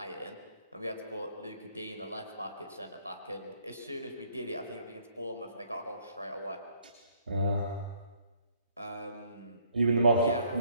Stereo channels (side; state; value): both; inverted; correlation -0.64